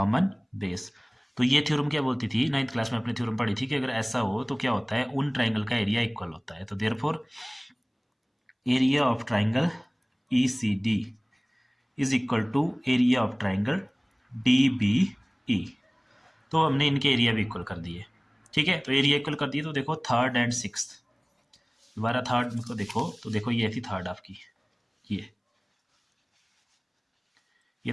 base. तो ये थ्योरम क्या बोलती थी, 9th क्लास में अपने थ्योरम पढ़ी थी कि अगर ऐसा हो तो क्या होता है, उन ट्राइंगल का एरिया इक्वल होता है। तो therefore area of triangle E C D is equal to area of triangle D B E. तो हमने इनके एरिया भी इक्वल कर दिए। ठीक है, तो एरिया इक्वल कर दिए। तो देखो थर्ड एंड 6th, दोबारा थर्ड को देखो, तो देखो ये थी थर्ड आपकी,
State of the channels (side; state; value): both; identical; correlation 1.00